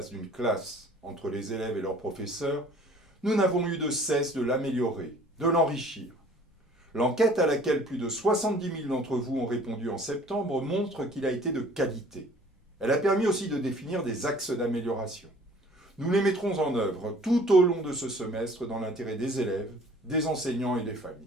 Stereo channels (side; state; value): both; normal; correlation 0.52